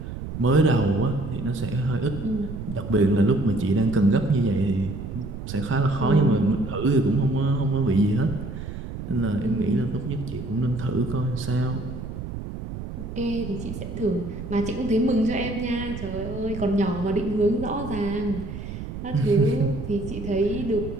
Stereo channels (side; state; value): right; noise; rumble, 8 dB below the sound